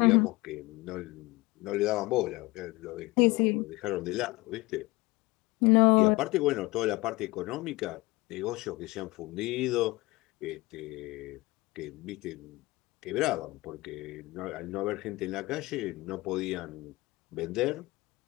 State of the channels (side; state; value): right; quieter; 22.1 dB